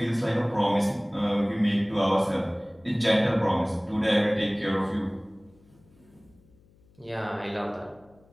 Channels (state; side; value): noise; left; hum, 30 dB below the sound